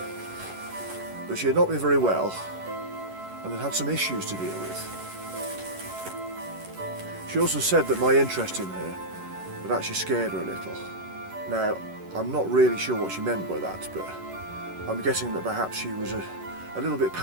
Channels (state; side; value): late; left; 11 ms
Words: that she had not been very well and had had some issues to deal with. She also said that my interest in her had actually scared her a little. Now, I'm not really sure what she meant by that, but I'm guessing that perhaps she was a little bit